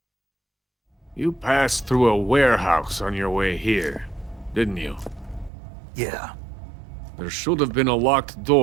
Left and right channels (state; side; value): drops out; left; at 5.5 s